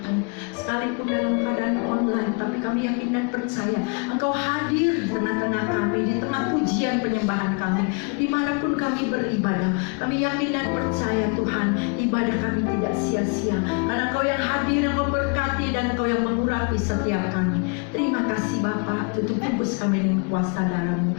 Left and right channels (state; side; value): quieter; right; 35.3 dB